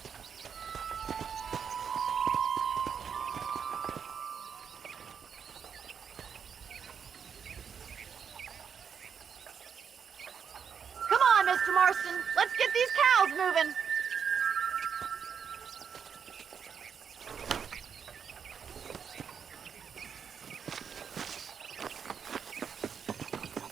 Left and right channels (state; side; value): quieter; left; 7.1 dB